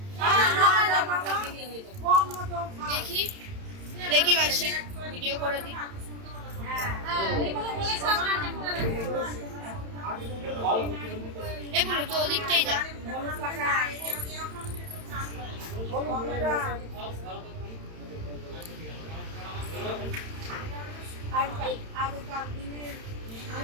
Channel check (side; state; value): left; late; 31 ms